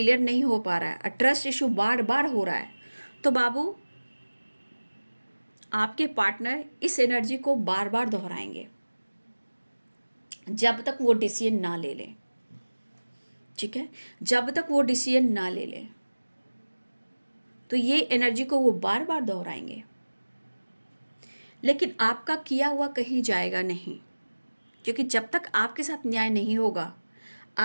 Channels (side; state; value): both; inverted; correlation -1.00